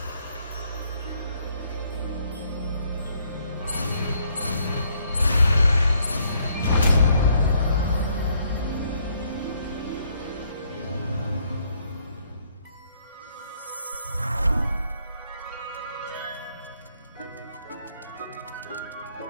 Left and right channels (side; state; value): both; inverted; correlation -0.69